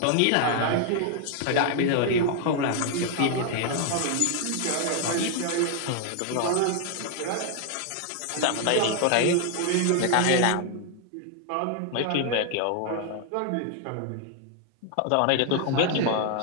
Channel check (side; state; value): both; different; correlation 0.00